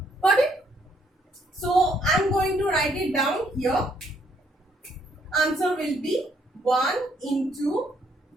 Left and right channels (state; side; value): normal; both; correlation 0.69